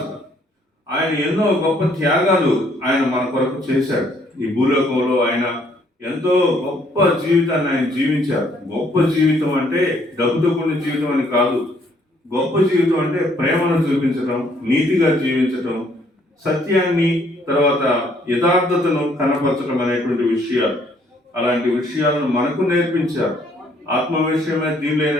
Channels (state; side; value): normal; both; correlation 0.66